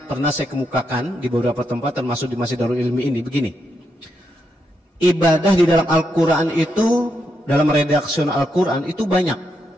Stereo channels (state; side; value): normal; both; correlation 0.81